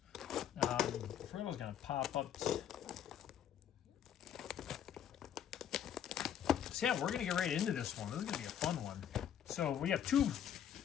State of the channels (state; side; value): quieter; right; 9.4 dB